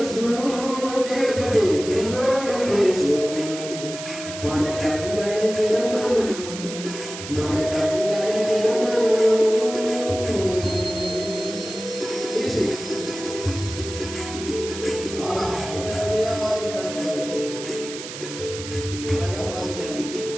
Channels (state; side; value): noise; right; hiss, 10 dB below the sound